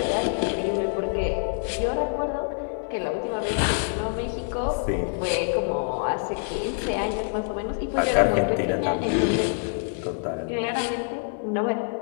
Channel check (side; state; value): right; silent; digital silence